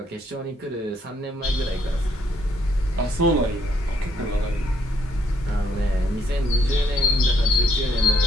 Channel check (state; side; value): normal; both; correlation 0.70